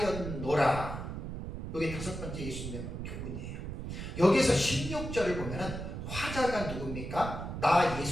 이게 다섯 번째 예수님의 교훈이에요. 여기서 16절을 보면은 화자가 누굽니까? 나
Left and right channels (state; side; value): noise; right; rumble, 6 dB below the sound